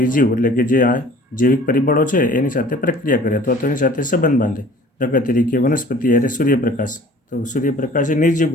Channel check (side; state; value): both; normal; correlation 0.49